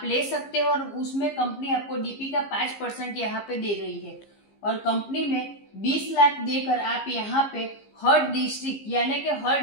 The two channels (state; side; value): late; right; 15 ms